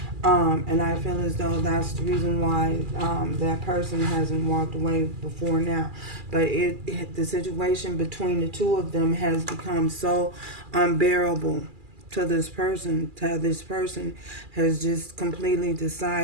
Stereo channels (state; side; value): late; left; 2.4 ms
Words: And I feel as though that's the reason why that person hasn't walked away before now. But the situation between the two of them has become so unbearable to this person. This person has just completely